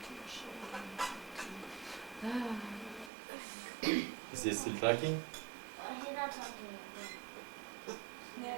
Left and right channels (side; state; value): left; drops out; at 3.1 s